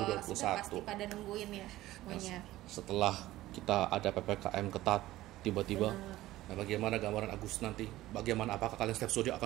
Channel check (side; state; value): left; quieter; 16.1 dB